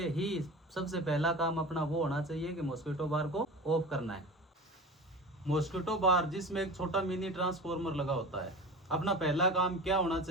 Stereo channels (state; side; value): normal; both; correlation 0.34